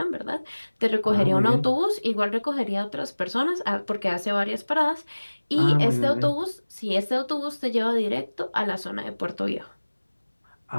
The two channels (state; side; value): inverted; both; correlation -1.00